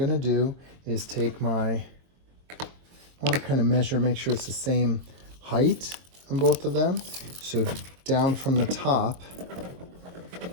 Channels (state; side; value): late; left; 23 ms